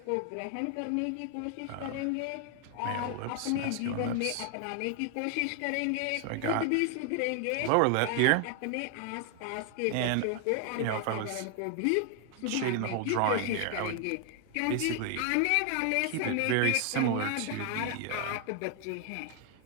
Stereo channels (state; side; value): different; both; correlation 0.00